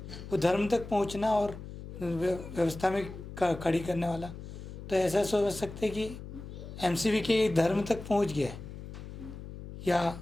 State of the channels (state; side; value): noise; left; hum, 11 dB below the sound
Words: वो धर्म तक पहुंचना और व्यवस्था में खड़ी करने वाला, तो ऐसा सोच सकते हैं कि एमसीवी के धर्म तक पहुंच गया है, या